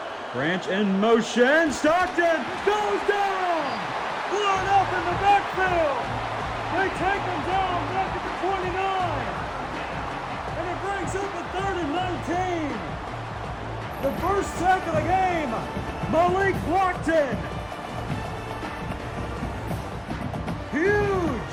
Branch in motion. Stockton goes down. Blown up in the backfield. They take him down back at the 29. And it brings up a 3rd and 19. The first sack of the game. Malik Blockton.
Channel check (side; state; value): both; identical; correlation 1.00